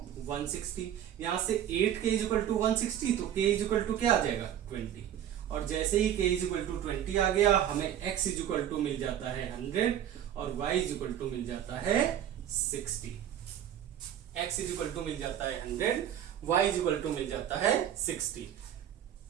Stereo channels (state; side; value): quieter; left; 10.5 dB